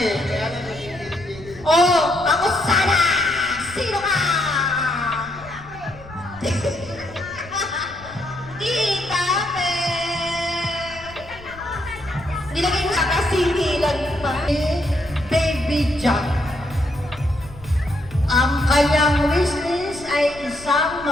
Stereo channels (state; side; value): noise; left; rumble, 19 dB below the sound